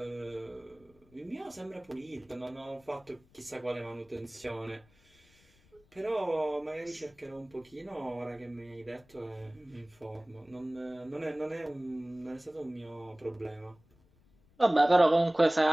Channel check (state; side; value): noise; left; rumble, 30 dB below the sound